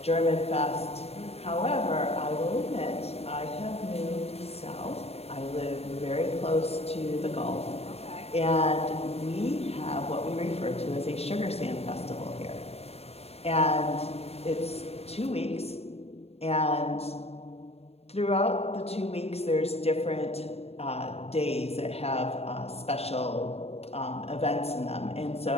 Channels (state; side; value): late; right; 0.30 ms